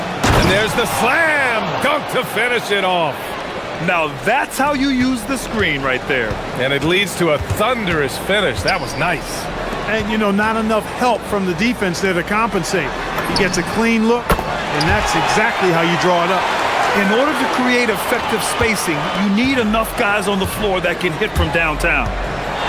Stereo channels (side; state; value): both; identical; correlation 1.00